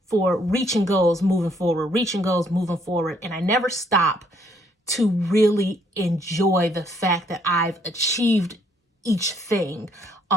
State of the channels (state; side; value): normal; both; correlation 0.67